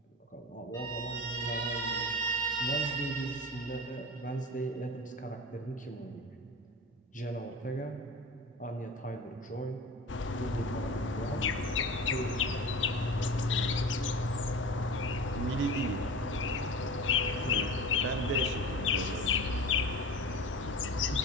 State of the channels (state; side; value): normal; both; correlation 0.34